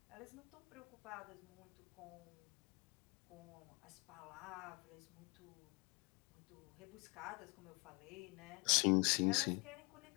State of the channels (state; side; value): quieter; right; 29.9 dB